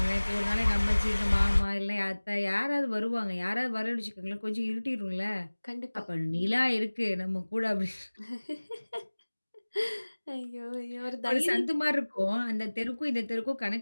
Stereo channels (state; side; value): inverted; both; correlation -1.00